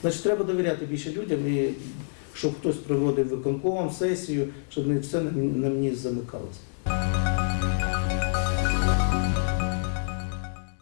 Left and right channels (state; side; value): silent; right; 60 dB below the other